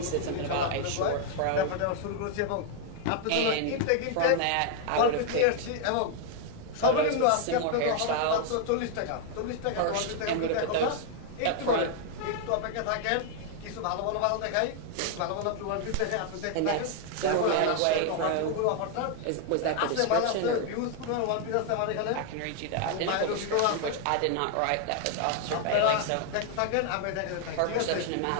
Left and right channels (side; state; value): both; different; correlation 0.00